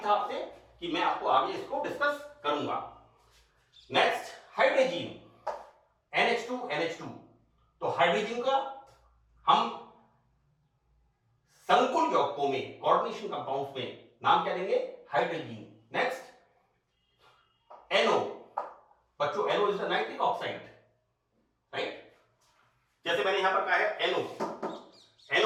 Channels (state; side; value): identical; both; correlation 1.00